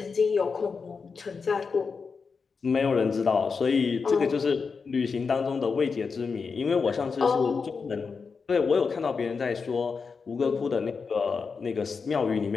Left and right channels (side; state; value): right; quieter; 5.1 dB